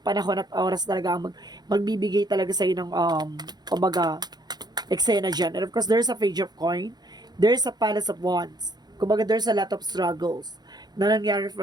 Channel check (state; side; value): late; left; 0.20 ms